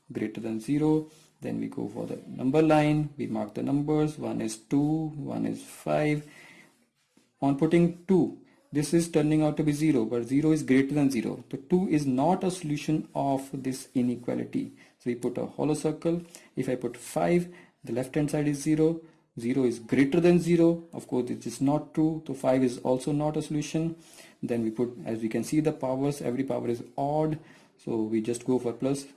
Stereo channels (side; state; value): both; identical; correlation 1.00